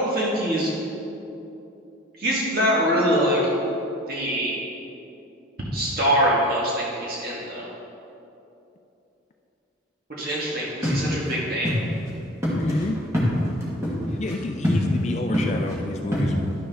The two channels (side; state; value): both; normal; correlation 0.42